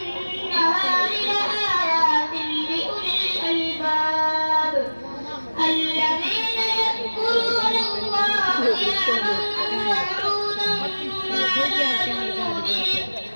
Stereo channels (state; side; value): inverted; both; correlation -1.00